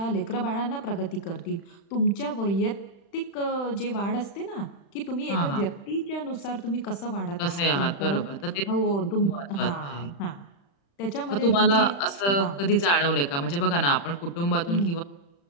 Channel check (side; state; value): right; late; 35 ms